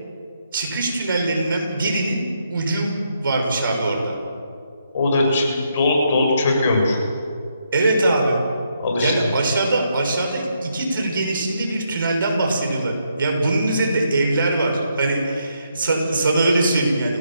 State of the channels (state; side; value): inverted; both; correlation -0.77